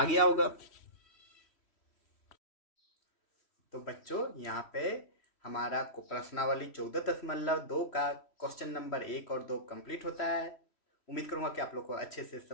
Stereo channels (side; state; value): right; late; 3.1 ms